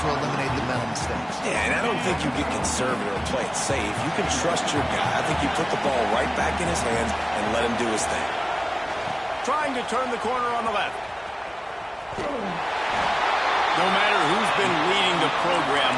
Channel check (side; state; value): both; identical; correlation 1.00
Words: eliminate the mental mistakes. Yeah, and I don't think you get conservative or play it safe. You can trust your guy. I think you put the ball right back in his hands and let him do his thing. Trying to turn the corner on the left. No matter who's been leading the program,